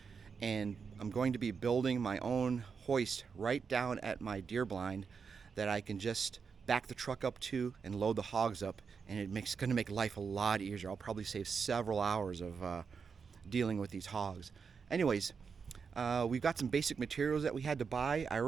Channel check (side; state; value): left; quieter; 5.8 dB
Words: and I'm going to be building my own hoist right down at my deer blind that I can just back the truck up to and load the hogs up, and it's going to make life a lot easier. I'll probably save several hours of dealing with these hogs. Anyways, we've got some basic materials that we had to buy. I